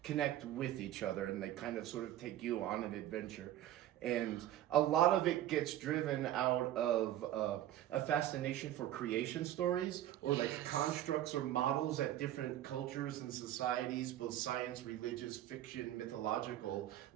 connect with each other, and they kind of sort of take you on an adventure. And a lot of it gets driven out of a fascination for creation stories, or like constructs or models that different cultures and societies, both science, religious, fiction, mythological,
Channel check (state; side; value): quieter; left; 12.9 dB